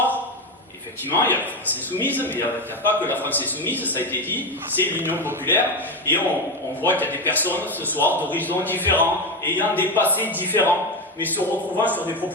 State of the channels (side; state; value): both; normal; correlation 0.14